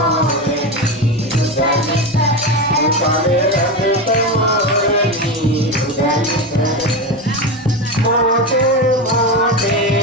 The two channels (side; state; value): both; normal; correlation 0.18